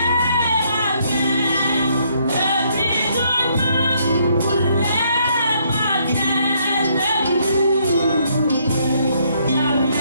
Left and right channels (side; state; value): both; inverted; correlation -0.70